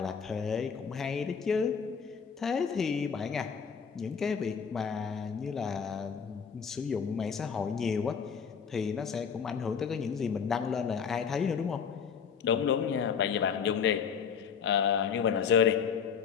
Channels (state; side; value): quieter; right; 6.7 dB